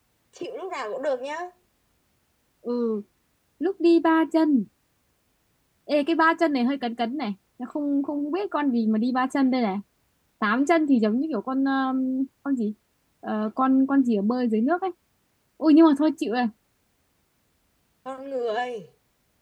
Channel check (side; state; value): both; identical; correlation 1.00